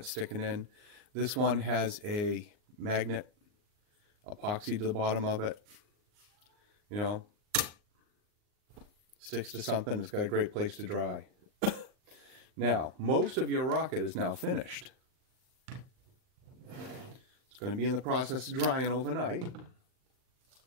sticking in. This one has a magnet epoxy to the bottom of it. You know, sticks to something. It's got a great place to dry. Now, most of your rocket is now finished. It's going to be in the process of drying overnight.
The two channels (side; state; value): left; late; 39 ms